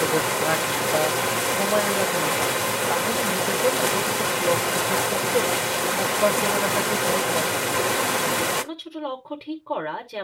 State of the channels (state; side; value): identical; both; correlation 1.00